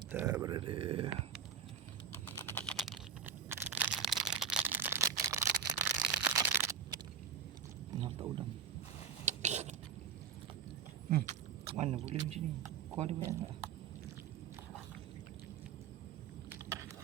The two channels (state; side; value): quieter; left; 6.7 dB